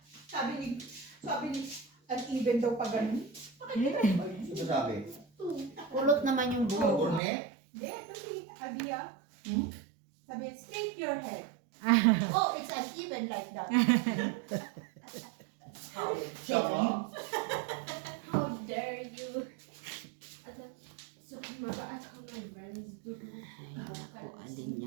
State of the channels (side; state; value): left; drops out; at 7.2 s